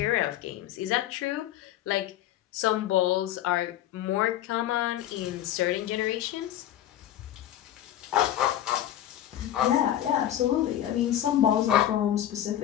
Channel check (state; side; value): quieter; right; 11.9 dB